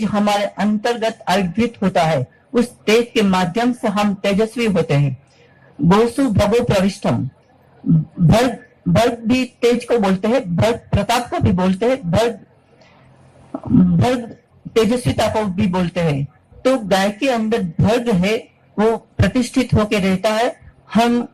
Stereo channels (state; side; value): identical; both; correlation 1.00